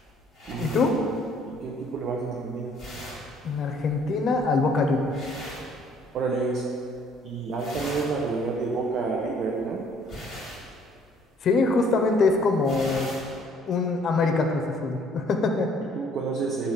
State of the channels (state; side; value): normal; both; correlation 0.60